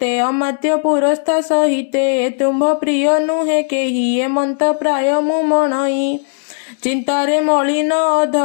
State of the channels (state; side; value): silent; right; 69 dB below the other